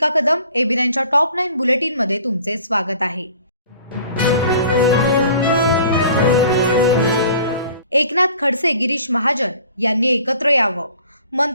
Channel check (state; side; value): inverted; both; correlation -0.51